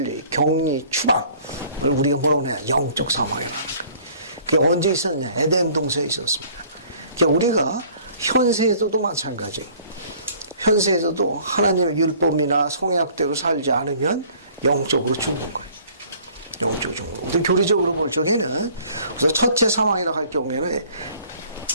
격리, 추방을 우리가 뭐라고 해야 영적 사망이라는 거예요. 그게 언제 있었냐? 에덴 동산에 있었습니다. 그러니까 우리가 현세에서도 마찬가지예요. 현세에서도 하나님의 율법이나 성약대로 살지 않으면 영적으로 죽은 거예요. 영적으로 죽은 거예요. 우리 교리적으로 볼 적에는, 그래서 첫째 사망이라고 할 경우에는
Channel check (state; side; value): inverted; both; correlation -0.54